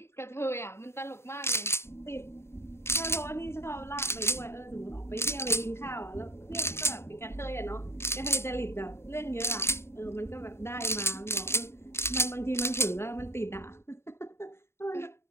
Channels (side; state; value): right; late; 0.12 ms